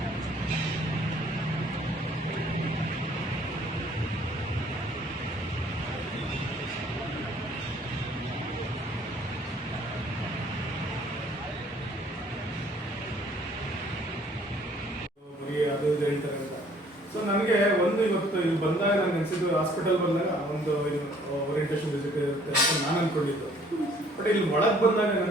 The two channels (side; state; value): both; normal; correlation 0.58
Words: ಅದು ಹೇಳ್ತಾರೆ ಅಂತ. ಸೊ ನನಗೆ ಒಂದು ಇವತ್ತು ಇಲ್ಲಿ ಬಂದಾಗ ನಾನು ಅನಿಸಿದ್ದು, ಹಾಸ್ಪಿಟಲ್ ಬಂದಾಗ ಒಂದು ಓರಿಯಂಟೇಷನ್ ವಿಸಿಟ್ ಇರುತ್ತೆ ಅಂತ ನಾನು ಅಂದ್ಕೊಂಡಿದ್ದು. ಬಟ್ ಇಲ್ಲಿ ಒಳಗೆ ಬಂದಾಗ